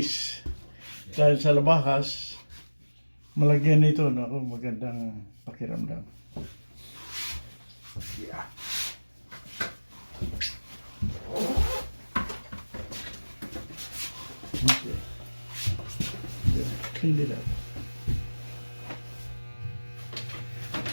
dahil sa labahas, malagyan nito nako magandang pakiramdam. Yeah. Okay. Yeah, clean it up.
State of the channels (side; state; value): both; inverted; correlation -1.00